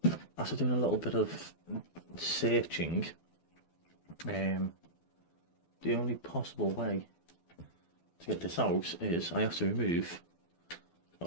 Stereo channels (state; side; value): late; right; 12 ms